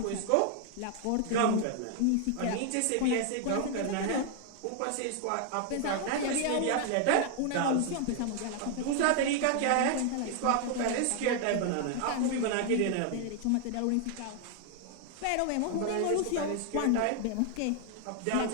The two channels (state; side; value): different; both; correlation 0.00